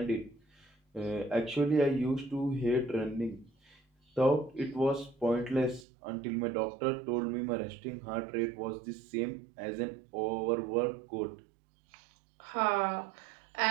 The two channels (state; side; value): drops out; left; at 5.9 s